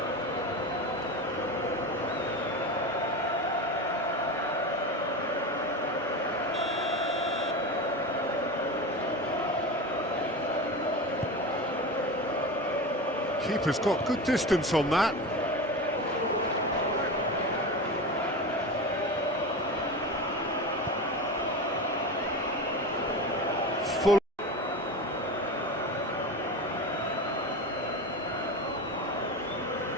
Keeper's got good distance on that. Full.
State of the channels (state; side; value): normal; both; correlation 0.25